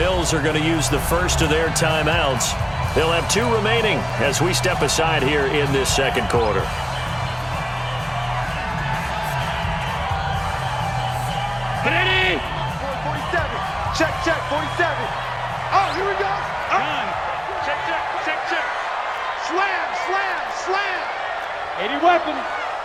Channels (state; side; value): identical; both; correlation 1.00